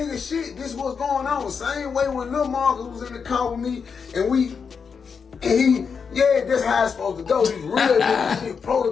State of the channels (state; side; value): quieter; right; 6.0 dB